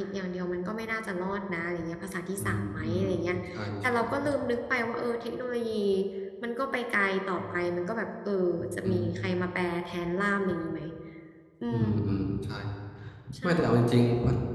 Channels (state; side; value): identical; both; correlation 1.00